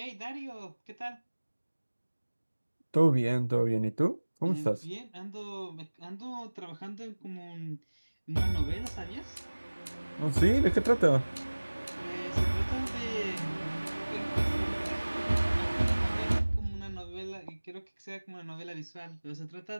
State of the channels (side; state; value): both; inverted; correlation -1.00